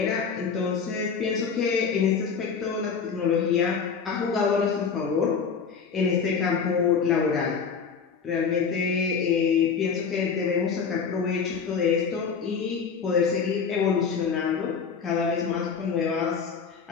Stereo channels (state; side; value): quieter; right; 6.1 dB